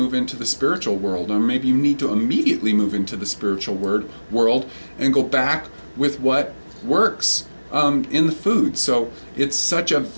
into the spiritual world, or maybe you need to immediately move into the spiritual world and go back with what works in the food. So it's such a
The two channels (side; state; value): both; inverted; correlation -1.00